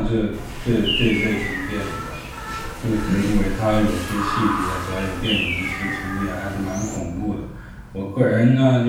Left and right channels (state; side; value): identical; both; correlation 1.00